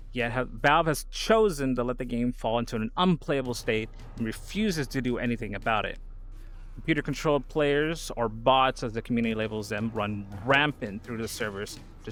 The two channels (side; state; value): both; identical; correlation 1.00